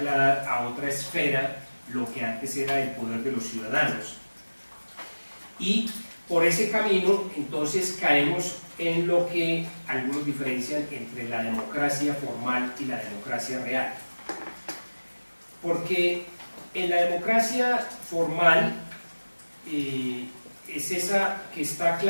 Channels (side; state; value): both; inverted; correlation -1.00